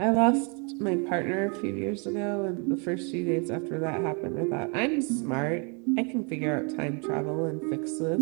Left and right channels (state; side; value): quieter; left; 35.6 dB